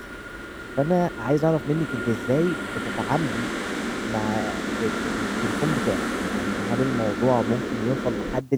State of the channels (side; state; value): both; identical; correlation 1.00